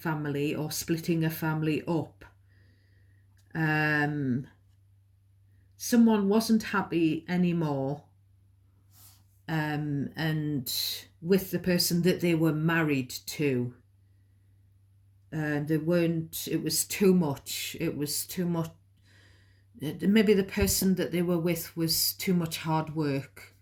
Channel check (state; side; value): identical; both; correlation 1.00